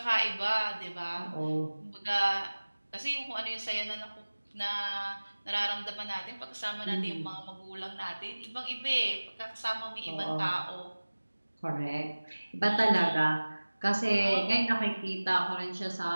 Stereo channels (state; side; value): inverted; both; correlation -1.00